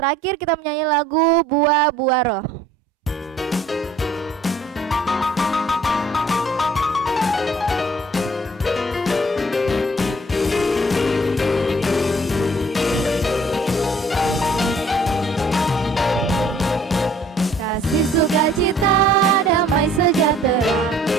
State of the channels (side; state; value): both; normal; correlation 0.56